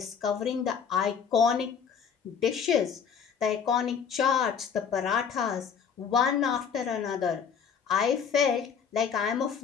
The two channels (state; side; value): quieter; right; 6.9 dB